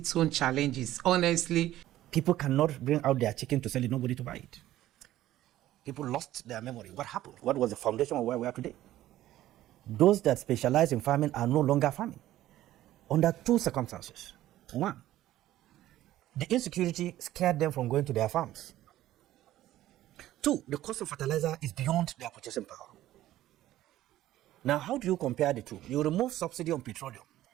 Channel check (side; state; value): left; quieter; 14.2 dB